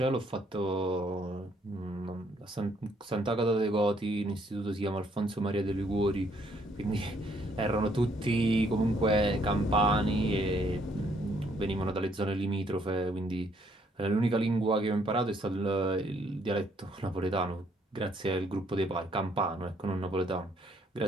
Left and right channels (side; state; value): both; normal; correlation 0.68